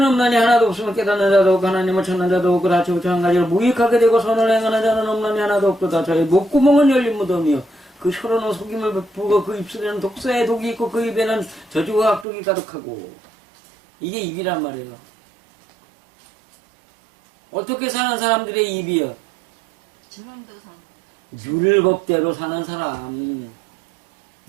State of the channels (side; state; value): left; drops out; at 12.2 s